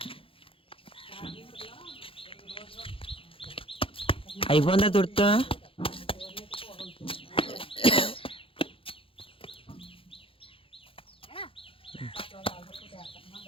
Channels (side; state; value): right; late; 0.26 ms